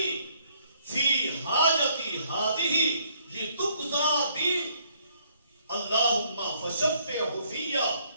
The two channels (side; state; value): both; inverted; correlation -0.66